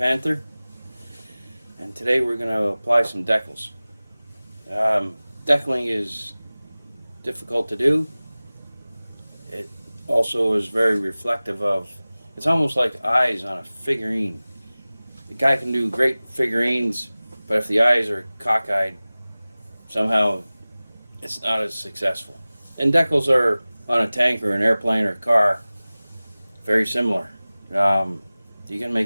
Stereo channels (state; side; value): inverted; both; correlation -0.98